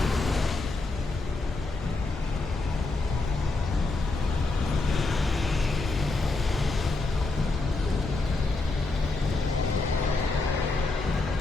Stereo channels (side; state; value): right; quieter; 3.3 dB